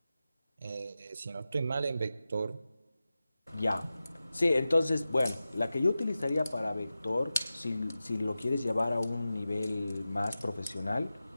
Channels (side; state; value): both; inverted; correlation -0.94